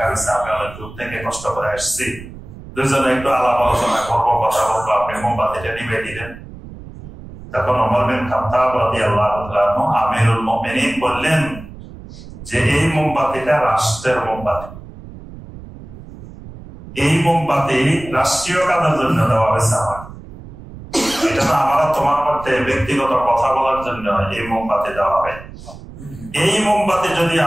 হয়েছে, আমি অনেক দূর থেকে কষ্ট করে আসছি, দুজনে একটু আলাপ আলোচনা করবো, কথা বলবো, আপনি মোমবাতিটা নিভে দিলেন। তখন ওমর বিন খাত্তাব রাদিয়াল্লাহু তাআলা আনহু আমিরুল মুমিনিন বললেন যে এই মোমবাতিটা রাষ্ট্রের মোমবাতি, এই মোমবাতি রাষ্ট্রীয় কাজের জন্য দেওয়া হয়েছে আমার, এটা তো আমার তোমার মধ্যে ব্যক্তিগত কথা বলার জন্য এই মোমবাতি দেওয়া হয়। এই মোমবাতি যদি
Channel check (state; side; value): noise; right; rumble, 15 dB below the sound